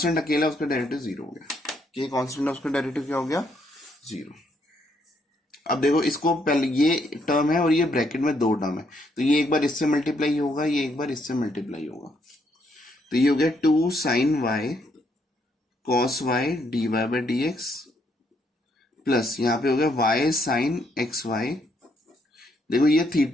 अकेला, उसका डेरिवेटिव 0 हो गया, के कॉन्स्टेंट है उसका डेरिवेटिव क्या हो गया 0। अब देखो इसको पहले ये टर्म है और ये ब्रैकेट में 2 टर्म है, तो ये एक बार इससे मल्टीप्लाई होगा, ये एक बार इससे मल्टीप्लाई होगा, तो ये हो गया 2 sine y cos y d y by d x plus यहाँ पे हो गया वाई साइन एक्स वाई। देखो ये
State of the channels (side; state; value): both; normal; correlation 0.73